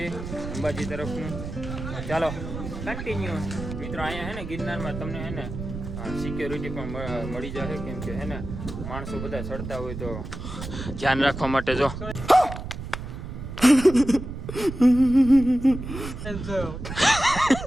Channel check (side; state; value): right; noise; rumble, 8 dB below the sound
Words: અંબાજી તરફનું. ચાલો કન્ટિન્યુ. મિત્રો અહીંયા હે ને ગિરનારમાં તમને હે ને સિક્યોરિટી પણ મળી જશે, કેમ કે હે ને માણસો બધા ચડતા હોય તો ધ્યાન રાખવા માટે. જો